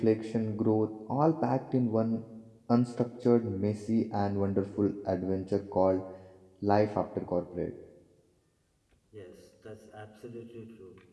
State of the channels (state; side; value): identical; both; correlation 1.00